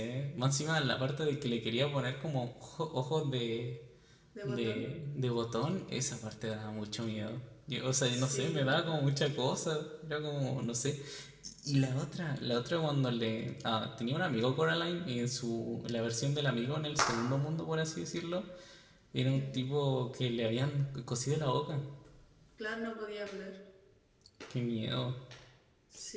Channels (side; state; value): both; identical; correlation 1.00